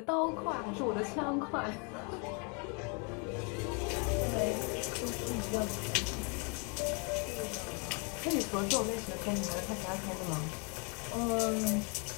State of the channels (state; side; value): quieter; right; 34.7 dB